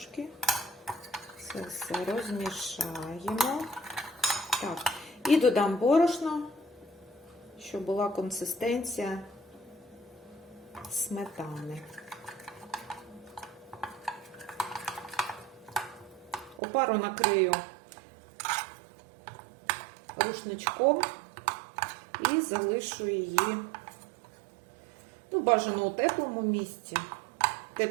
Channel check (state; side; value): drops out; left; at 16.6 s